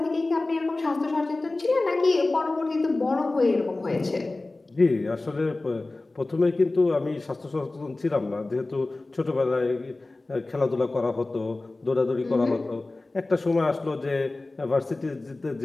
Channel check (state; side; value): quieter; right; 3.1 dB